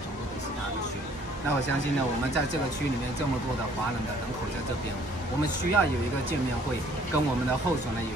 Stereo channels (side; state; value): both; normal; correlation 0.59